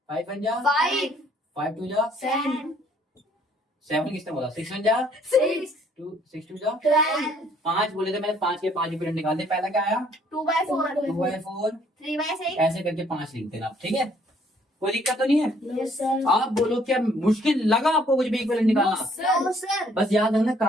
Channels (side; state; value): both; normal; correlation 0.63